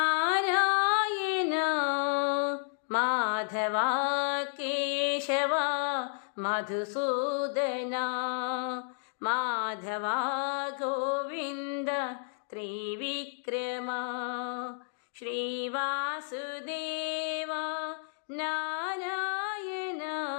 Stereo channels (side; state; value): right; silent; digital silence